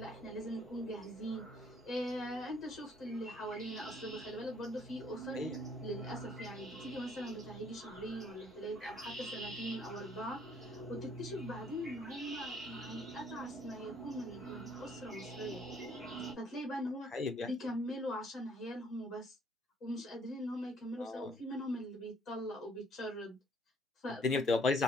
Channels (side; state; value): both; normal; correlation 0.63